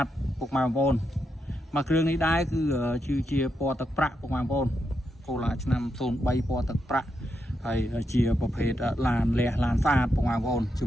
តពុកម៉ែបងប្អូនមកគ្រឿងនេះដែរគឺជាពណ៌ទឹកប្រាក់ពុកម៉ែបងប្អូនកូឡាឆ្នាំ03ពណ៌ទឹកប្រាក់ហើយជាប្រភេទឡានលះឡានស្អាតពុកម៉ែបងប្អូនជា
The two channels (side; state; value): both; normal; correlation 0.83